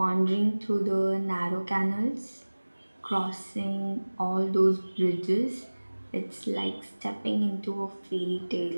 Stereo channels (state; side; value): inverted; both; correlation -1.00